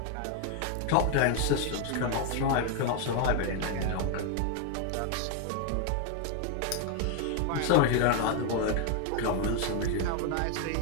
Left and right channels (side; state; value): both; different; correlation 0.00